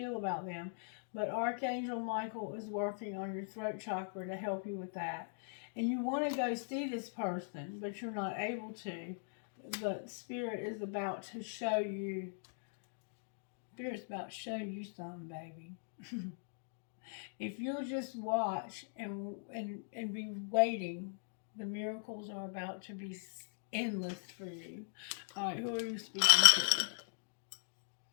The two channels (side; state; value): right; silent; digital silence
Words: about them. But Archangel Michael is working on your throat chakra to help you with that. And you want to go see this person, but you're not able to. But Spirit is about to show you. Spirit's about to show you something, baby. If you'll just watch and be waiting, the miracles are about to be endless for you. All right, who are you speaking